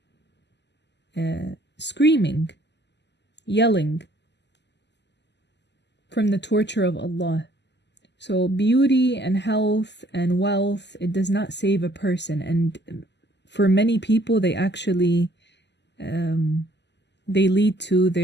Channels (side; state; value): right; late; 0.50 ms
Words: screaming, yelling from the torture of Allah. So beauty and health and wealth, it does not save a person. And for many people, they actually, they lead to